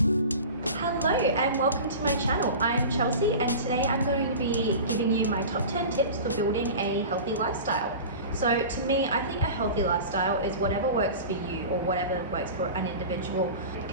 welcome to my channel. I'm Chelsea and today I'm going to be giving you my top 10 tips for building a healthy lifestyle. So to me, I think a healthy lifestyle is whatever works for you or whatever works for an individual. It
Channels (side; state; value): both; inverted; correlation -0.34